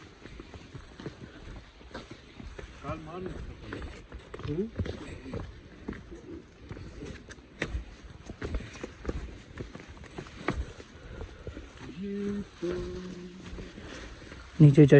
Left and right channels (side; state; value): both; identical; correlation 1.00